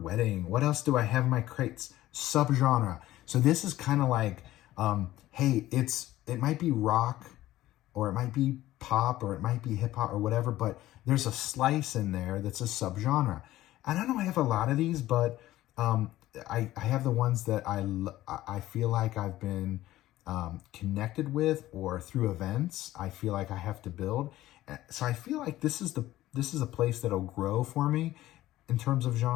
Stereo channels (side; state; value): right; quieter; 15.3 dB